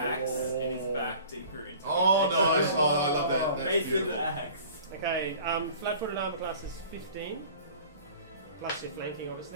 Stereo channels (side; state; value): both; inverted; correlation -0.45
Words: in his back deeper into Oh, it. nice! Oh, I love that. That's Mason beautiful. axe. Okay, flat-footed armor class is 15. Plus your flanking,